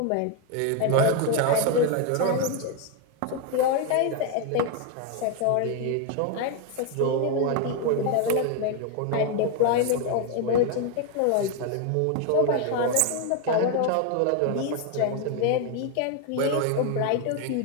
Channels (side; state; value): both; different; correlation 0.01